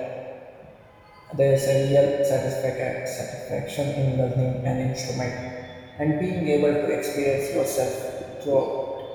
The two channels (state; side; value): identical; both; correlation 1.00